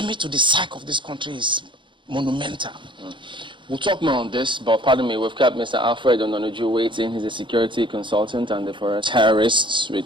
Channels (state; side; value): late; left; 0.23 ms